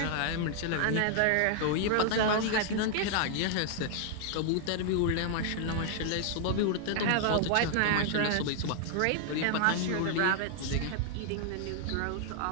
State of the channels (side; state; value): both; different; correlation -0.01